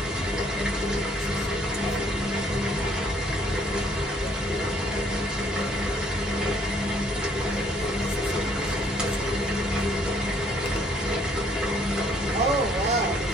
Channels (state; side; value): normal; both; correlation 0.64